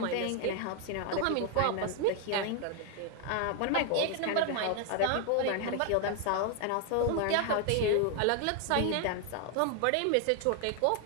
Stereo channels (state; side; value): different; both; correlation 0.00